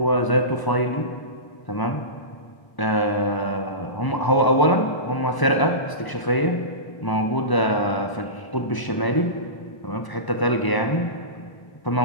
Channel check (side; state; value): right; late; 1.0 ms